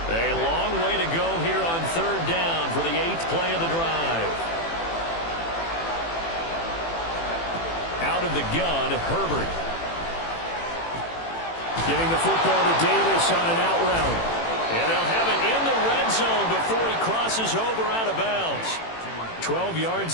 A long way to go here on third down for the 8th play of the drive. Out of the gun, Herbert. Getting the football to Davis on an out route. And they'll have it in the red zone before he crosses over out of bounds. 12 yards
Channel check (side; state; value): right; late; 18 ms